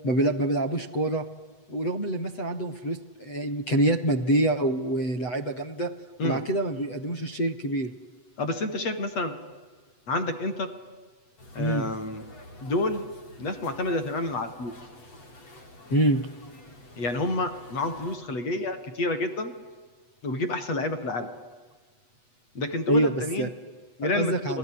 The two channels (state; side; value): late; right; 8.1 ms